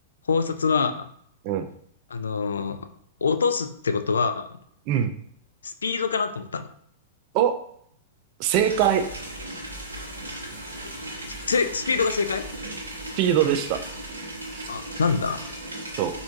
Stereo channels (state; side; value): inverted; both; correlation -0.42